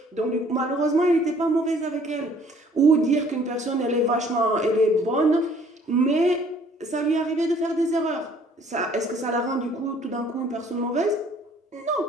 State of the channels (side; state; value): both; normal; correlation 0.58